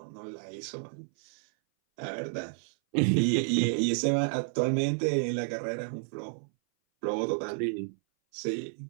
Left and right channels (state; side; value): silent; left; 57 dB below the other